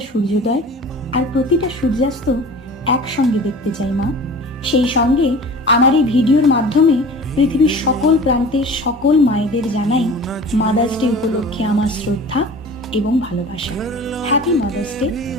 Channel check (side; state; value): both; normal; correlation 0.40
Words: সূর্যোদয় আর প্রতিটা সূর্যাস্ত একসঙ্গে দেখতে চাই মা। সেই সঙ্গে আমার এই ভিডিওর মাধ্যমে পৃথিবীর সকল প্রান্তের সকল মায়েদের জানাই মাদার্স ডে উপলক্ষে আমার শ্রদ্ধা এবং ভালোবাসা। Happy mother's day